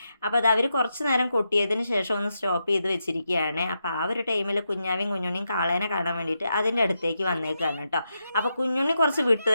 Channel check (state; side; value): inverted; both; correlation -0.85